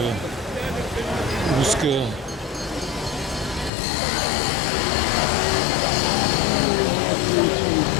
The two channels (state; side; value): drops out; right; at 3.7 s